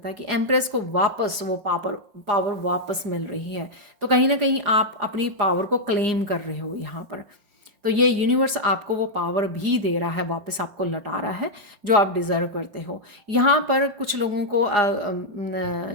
है कि एम्प्रेस को वापस वो पावर पावर वापस मिल रही है। तो कहीं न कहीं आप अपनी पावर को क्लेम कर रहे हो यहाँ पर। तो ये यूनिवर्स आपको वो पावर भी दे रहा है, वापस आपको लौटा रहा है जो आप डिज़र्व करते हो। यहाँ पर कुछ लोगों को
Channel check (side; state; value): left; late; 5.3 ms